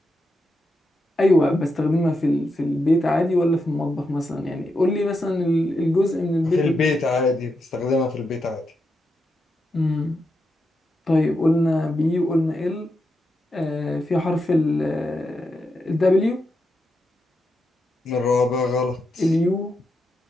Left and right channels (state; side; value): normal; both; correlation 0.85